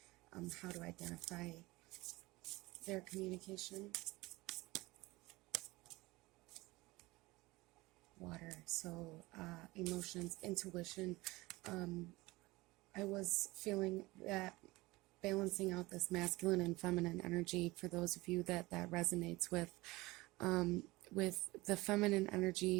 how to identify their communication. Water, so emotions, intuition. I was feeling that balancing out this masculine and feminine energy, for those of you that resonates with the feminine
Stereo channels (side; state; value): left; quieter; 21.1 dB